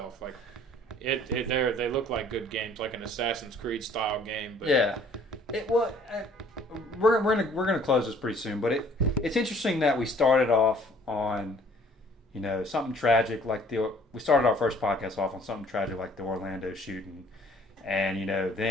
Like they look like good games, like an Assassin's Creed style game. But yeah. We're gonna close this pretty soon, but it's interesting that we started off on, something tragic like we started our first podcast off on something tragic like the Orlando shooting. And,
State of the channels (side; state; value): both; normal; correlation 0.57